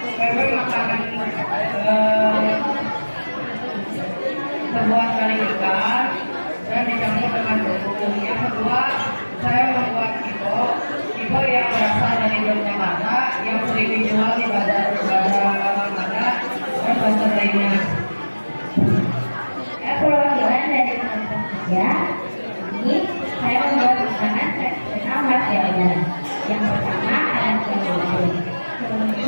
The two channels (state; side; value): inverted; both; correlation -1.00